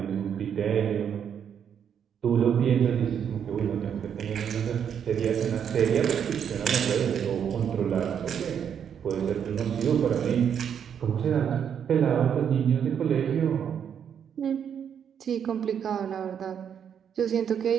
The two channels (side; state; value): left; quieter; 8.2 dB